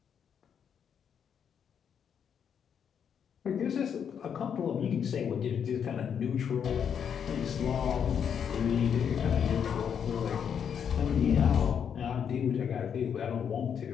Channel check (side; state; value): right; quieter; 7.8 dB